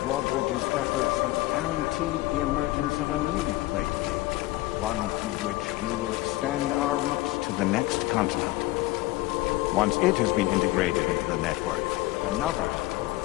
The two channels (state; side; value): quieter; right; 19.1 dB